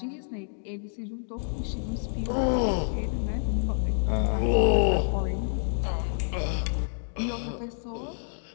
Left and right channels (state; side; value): silent; right; digital silence